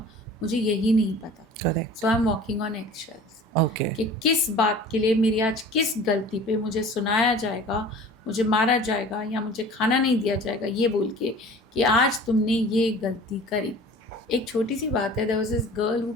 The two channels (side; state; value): both; normal; correlation 0.43